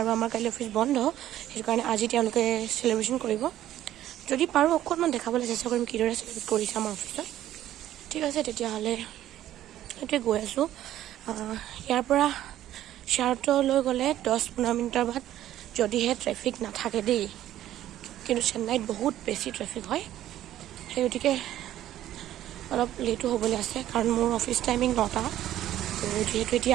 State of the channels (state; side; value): quieter; left; 12.8 dB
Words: আমাৰ কাইলৈ অফিচ বন্ধ সেইটো কাৰণে আজি তেওঁলোকে চেলিব্ৰেশ্যন কৰিব যদি পাৰোঁ অকণমান দেখাবলৈ চেষ্টা কৰিম কিদৰে চেলিব্ৰেট কৰিছে আমাৰ অফিচত ঠিক আছে তেতিয়াহ'লে সেইটোৱে গৈ আছোঁ ইয়াৰ পৰা শ্বেয়াৰটোলৈ গ'লে 10-15 মিনিটৰ বাদ যদিহে ট্ৰেফিক নাথাকে দেই কিন্তু চেন্নাইত বহুত বেছি ট্ৰেফিক হয় সেই গতিকে অলপ লেটো হ'বলৈ আছে কাৰণ মোৰ অফিচ টাইমিং 9টা যিহেতু